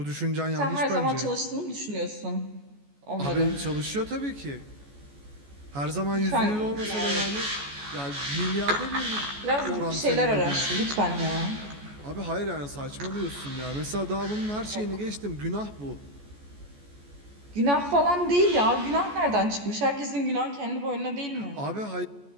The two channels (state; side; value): late; left; 14 ms